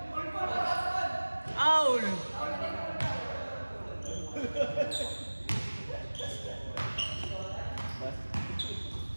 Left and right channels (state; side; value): inverted; both; correlation -1.00